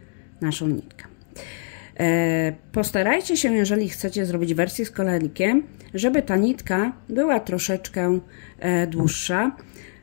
naszą nitkę. Postarajcie się, jeżeli chcecie zrobić wersję z koralikiem, żeby ta nitka była troszeczkę dłuższa,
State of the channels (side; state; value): right; silent; digital silence